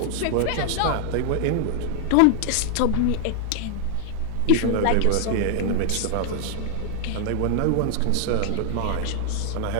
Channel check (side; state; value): both; different; correlation 0.00